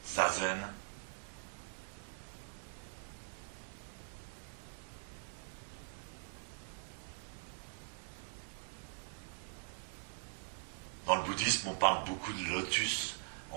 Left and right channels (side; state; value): left; silent; digital silence